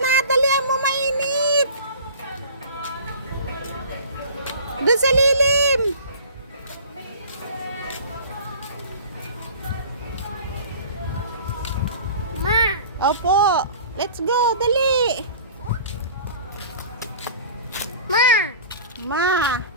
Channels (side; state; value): both; inverted; correlation -0.42